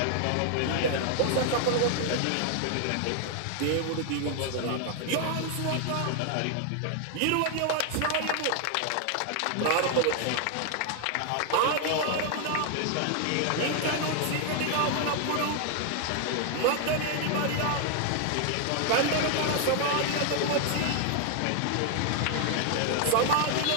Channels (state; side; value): different; both; correlation 0.00